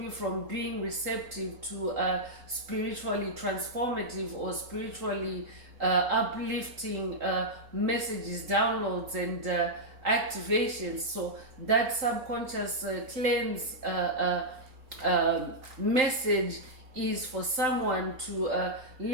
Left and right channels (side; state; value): left; late; 3.8 ms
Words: from being receptive to spiritually transformative or spiritually uplifting messages, downloads, and activations. So that subconscious cleanse message is for someone to